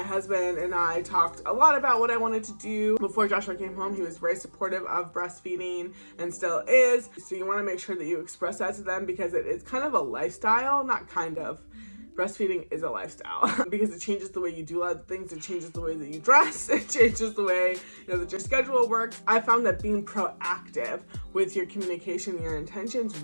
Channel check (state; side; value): inverted; both; correlation -1.00